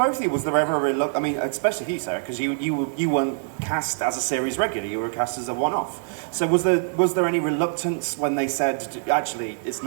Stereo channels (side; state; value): left; silent; digital silence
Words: of you, was there ever a reluctance? I mean, especially you, Sarah, because you weren't cast as a series regular; you were cast as a one-off. So was there any reluctance when they said, actually, it's